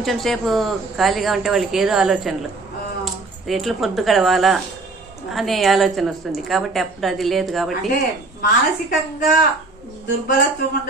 సేపు ఖాళీగా ఉంటే వాళ్ళకి ఏదో ఆలోచనలు, ఎట్లా పొద్దు గడవాలా అనే ఆలోచన వస్తుంది. కాబట్టి అప్పుడు అది లేదు. కాబట్టి మానసికంగా దుర్బలత్వం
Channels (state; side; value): quieter; left; 3.4 dB